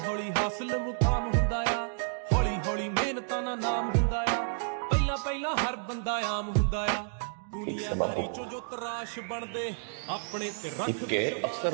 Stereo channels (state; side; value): silent; left; digital silence